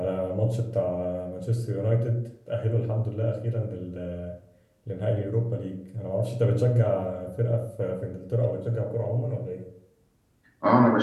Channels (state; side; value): identical; both; correlation 1.00